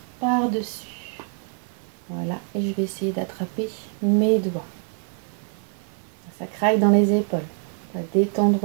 par-dessus. Voilà, et je vais essayer d'attraper mes doigts. Ça craque dans les épaules. On va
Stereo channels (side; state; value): left; quieter; 38.2 dB